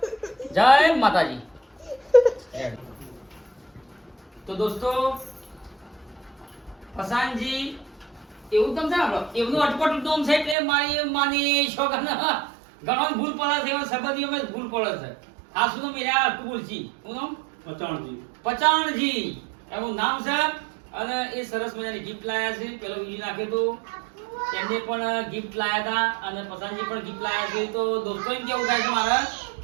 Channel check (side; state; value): left; drops out; at 10.6 s